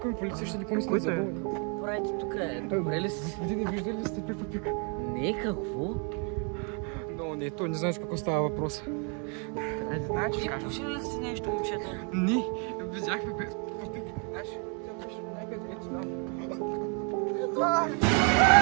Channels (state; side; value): quieter; left; 37.6 dB